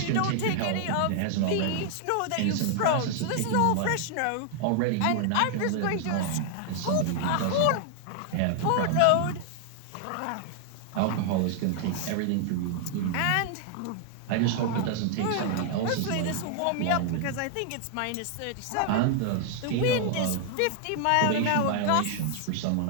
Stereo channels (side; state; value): both; different; correlation 0.00